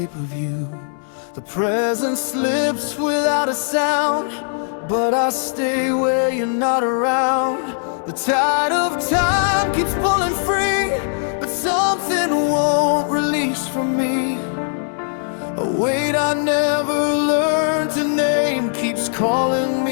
of you. The present slips without a sound, but I stay where you're not around. The tide of time keeps pulling free, but something won't release from me. A weight I never learned to name keeps calling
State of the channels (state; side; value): silent; right; digital silence